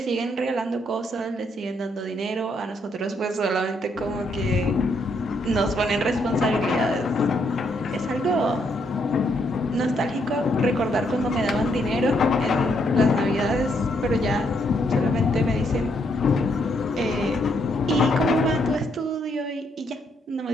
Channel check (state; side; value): normal; both; correlation 0.74